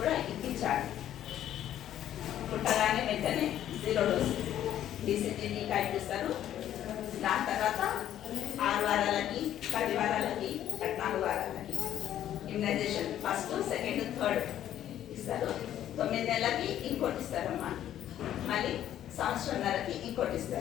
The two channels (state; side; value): quieter; right; 11.5 dB